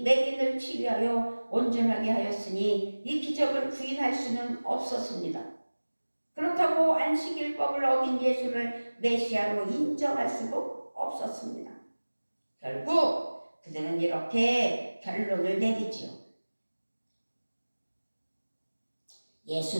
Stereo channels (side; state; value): both; inverted; correlation -1.00